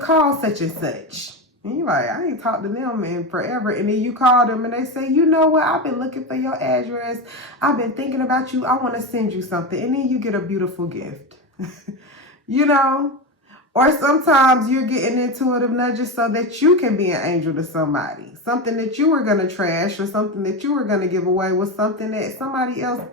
such and such. And you're like, I ain't talked to them in forever. And then you call them and they say, you know what? I've been looking for your address. I've been thinking about you. I want to send you something. And then you get a beautiful gift. You know, or sometimes you're getting intuitive nudges so that you can be an angel to somebody. Something that you were going to trash or something that you were going to give away was something that somebody else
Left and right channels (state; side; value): normal; both; correlation 0.18